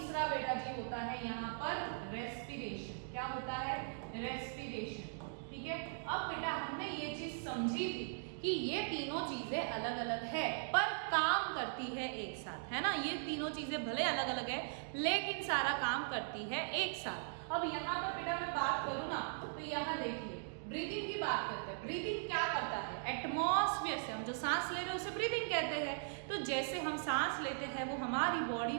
बेटा जी होता है यहाँ पर रेस्पिरेशन, क्या होता है, रेस्पिरेशन, ठीक है। अब बेटा हमने ये चीज समझी थी कि ये तीनों चीजें अलग अलग है पर काम करती है एक साथ, है ना। ये तीनों चीजें भले अलग अलग है लेकिन सारा काम करती है एक साथ। अब यहाँ पर बेटा मैं बात करूँ ना, तो यहाँ देखिए ब्रीदिंग की बात करते हैं। ब्रीदिंग क्या करता है, एटमॉस्फेयर से हम जो सांस ले रहे हैं उसे ब्रीदिंग कहते हैं। तो जैसे हम सांस लेते हैं वो हमारी बॉडी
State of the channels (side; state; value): left; silent; digital silence